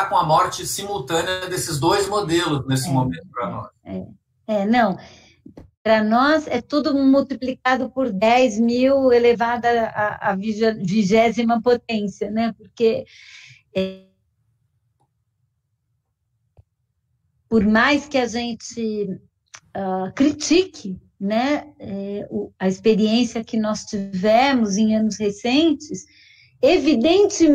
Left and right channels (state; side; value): identical; both; correlation 1.00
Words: com a morte simultânea desses dois modelos nesse momento para nós. Não, para nós é tudo multiplicado por 10 mil elevado à 20ª potência, né? Porque por mais que a gente critique, né, a experiência que nós tivemos em anos recentes,